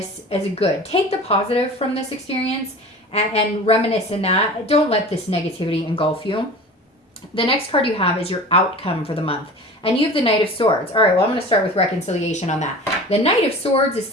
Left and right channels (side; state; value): both; normal; correlation 0.38